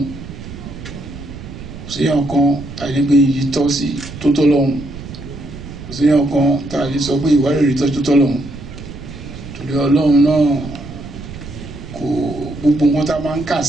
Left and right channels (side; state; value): right; noise; rumble, 12 dB below the sound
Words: Kò séèyàn kan tàbí pé iyì tọ́ sí tó tọ́ lọ́hùn. Kò séèyàn kan tá a lè sọ pé ìwárìrì tọ́ tó tọ́ lọ́hùn. Torí Ọlọ́run náà kò gbogbo nǹkan tá a máa ń kà